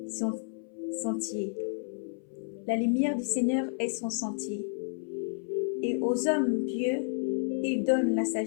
son sentier. La lumière du Seigneur est son sentier. Et aux hommes pieux, il donne la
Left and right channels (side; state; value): right; silent; 57 dB below the other